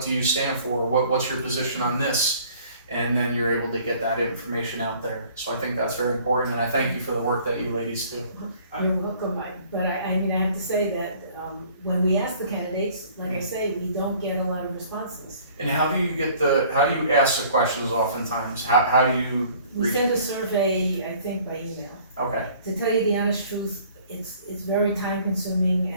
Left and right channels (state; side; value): inverted; both; correlation -0.54